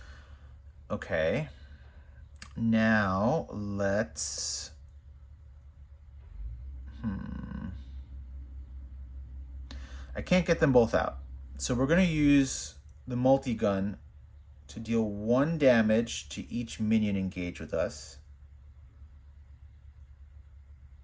Okay. Now let's I can't get them both out. So we're going to use the multi-gun to deal 1 damage to each minion engaged with us.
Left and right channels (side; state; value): both; identical; correlation 1.00